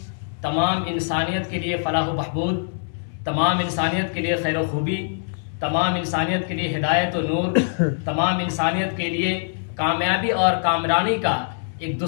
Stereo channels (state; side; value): silent; right; 63 dB below the other